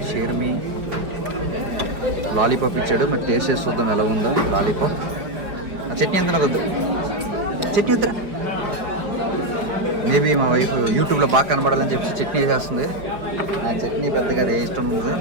షేర్మి లాలీపాప్ ఇచ్చాడు. మరి టేస్ట్ చేసి చూద్దాం ఎలా ఉందో లాలీపాప్. ఆ చట్నీ ఎంత నాకు వద్దు, చట్నీ వద్దురా. మేబీ మా వైఫ్ యూట్యూబ్లో బాగా కనబడాలని చెప్పి చట్నీ వేసేస్తుంది. ఆ చట్నీ పెద్దగా అది ఇష్టం ఉంది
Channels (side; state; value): left; late; 4.9 ms